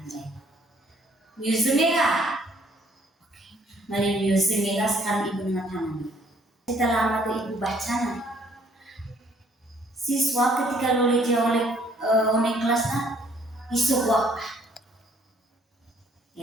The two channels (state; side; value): normal; both; correlation 0.63